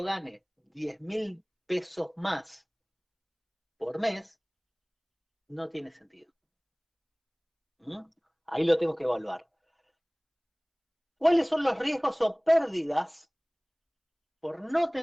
gane 10.000 pesos más por mes, no tiene sentido. ¿Mm? Ahí lo tengo que evaluar. ¿Cuáles son los riesgos o pérdidas por no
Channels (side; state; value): both; identical; correlation 1.00